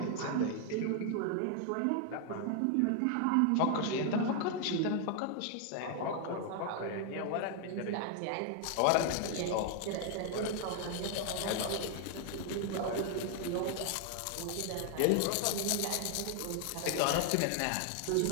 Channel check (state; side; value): different; both; correlation 0.00